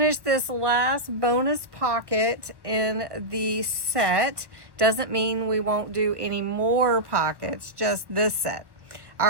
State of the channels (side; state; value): left; late; 1.1 ms